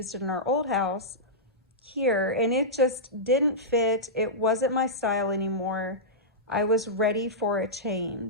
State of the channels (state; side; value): normal; both; correlation -0.14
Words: in our old house here, and it just didn't fit. It wasn't my style anymore. I was ready for a